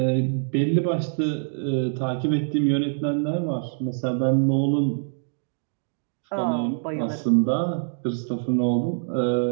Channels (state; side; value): silent; left; digital silence